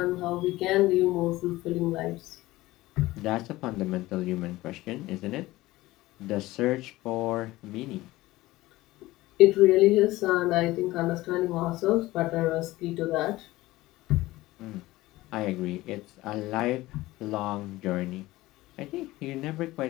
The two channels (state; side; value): quieter; right; 18.1 dB